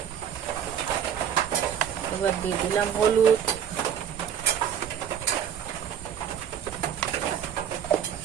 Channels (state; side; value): quieter; left; 8.7 dB